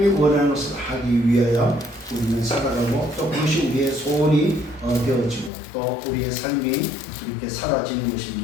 원하는 것을 하기 위하여 우리는 살아가고 또 그것이 우리의 소원이 되어지고 또 우리의 삶이 이렇게 사라지는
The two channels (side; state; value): right; drops out; at 5.5 s